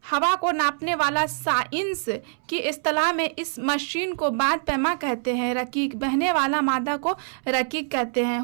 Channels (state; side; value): silent; left; 62 dB below the other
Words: हवा को नापने वाला साइंस की इस्तेलाह में इस मशीन को बाद पैमा कहते हैं। रकीक, बहने वाला मादा को रकीक कहते हैं।